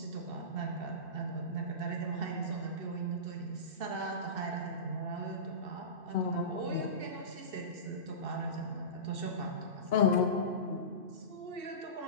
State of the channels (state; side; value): late; left; 2.7 ms